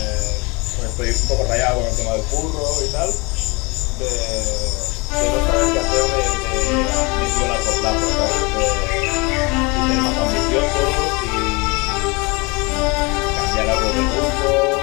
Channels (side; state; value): right; quieter; 27.6 dB